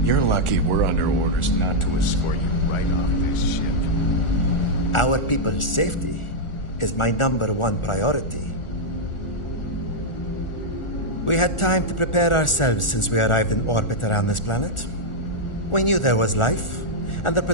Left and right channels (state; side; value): late; right; 1.4 ms